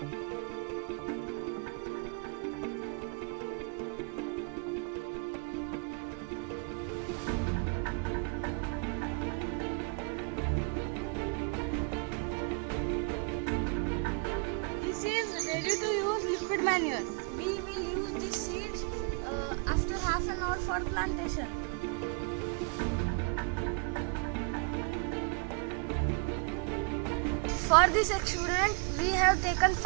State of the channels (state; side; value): quieter; left; 34.8 dB